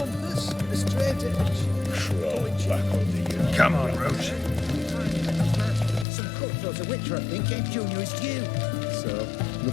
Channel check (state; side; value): drops out; right; at 6.1 s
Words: A straight edge? Throw it back on the Come on, Roach. Some cutthroat of Witcher, I think, gave Junior his due. So,